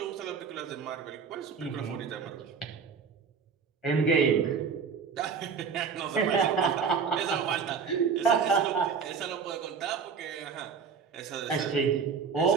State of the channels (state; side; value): quieter; left; 6.0 dB